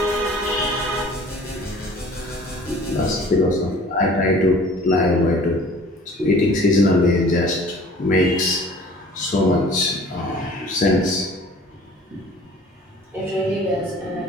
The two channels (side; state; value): both; normal; correlation 0.48